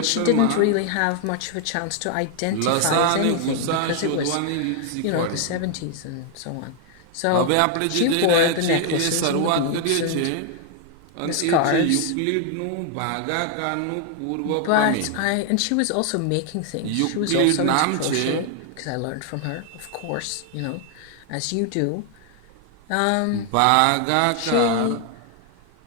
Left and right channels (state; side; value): different; both; correlation 0.00